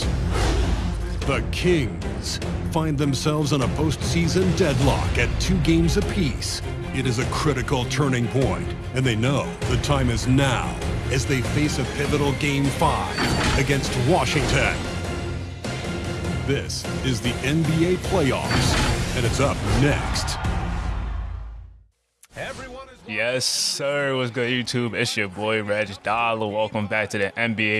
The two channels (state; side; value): identical; both; correlation 1.00